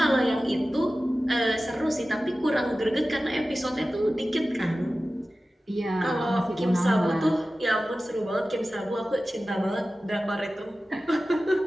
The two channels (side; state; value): both; normal; correlation 0.95